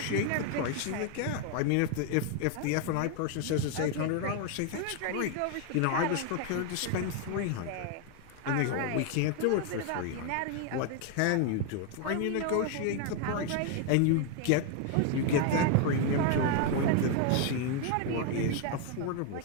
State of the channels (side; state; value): both; different; correlation 0.00